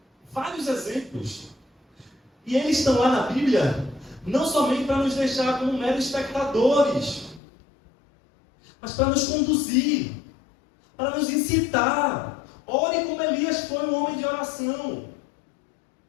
Vários exemplos. E eles estão lá na Bíblia não somente para nos deixar como meros espectadores, mas para nos conduzir, para nos incitar. Ore como Elias foi um homem de oração.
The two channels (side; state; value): right; drops out; at 7.4 s